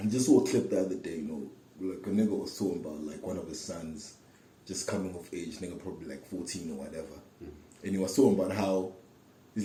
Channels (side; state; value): both; identical; correlation 1.00